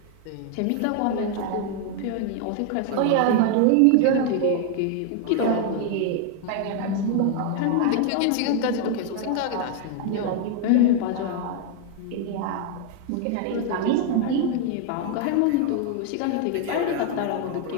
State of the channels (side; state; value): both; different; correlation 0.00